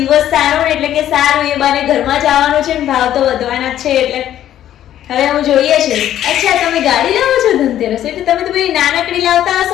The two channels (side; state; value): right; quieter; 11.7 dB